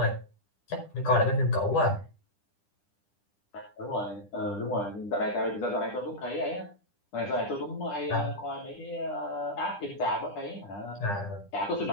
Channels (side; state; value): right; late; 10 ms